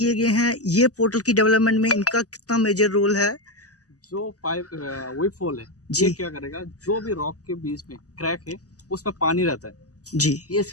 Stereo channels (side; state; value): right; late; 0.67 ms